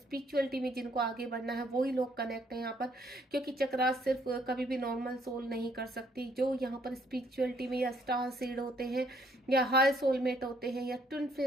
में जिनको आगे बढ़ना है वही लोग कनेक्ट हैं यहाँ पर, क्योंकि चक्रास सिर्फ कभी भी नॉर्मल सोल नहीं कर सकती। जो यहाँ पर स्पिरिचुअलिटी में या स्टार सीड होते हैं या हाई सोलमेट होते हैं या ट्विन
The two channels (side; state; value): both; normal; correlation 0.67